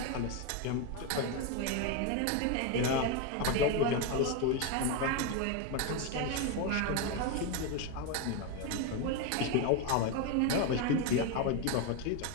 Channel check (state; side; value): different; both; correlation 0.02